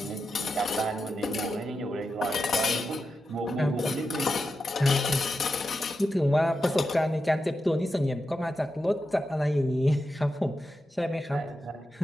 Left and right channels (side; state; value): both; normal; correlation 0.88